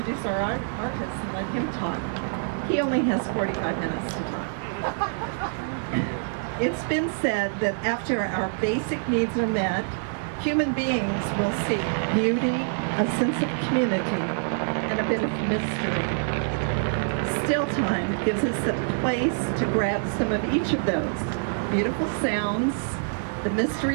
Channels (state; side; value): silent; left; 61 dB below the other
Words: our artist and let him talk. He only has 45 minutes to talk. It's been said that after our basic needs are met, human beings will seek beauty, a sense of community, and a bit of mystery. Still Time gives us a place to grab some of each of those. Beautiful sounds, the